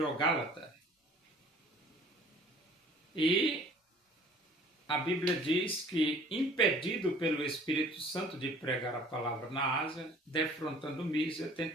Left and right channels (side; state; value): both; normal; correlation 0.52